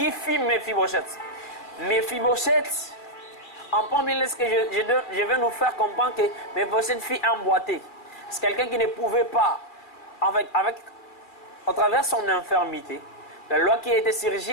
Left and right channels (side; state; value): right; late; 2.2 ms